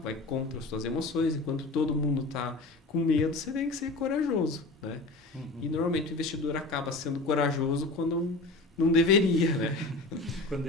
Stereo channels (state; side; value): quieter; right; 3.1 dB